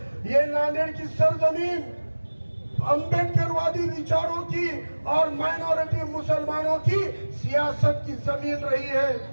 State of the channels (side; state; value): both; inverted; correlation -1.00